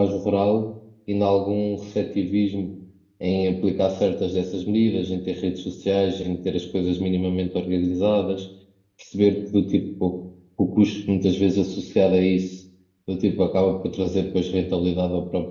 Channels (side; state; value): both; identical; correlation 1.00